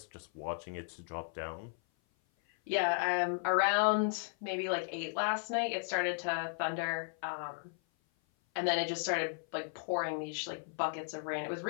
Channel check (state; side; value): silent; right; 54 dB below the other